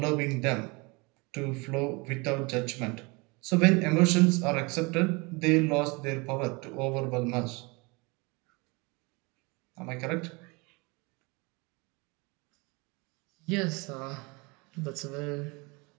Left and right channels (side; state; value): left; quieter; 27.5 dB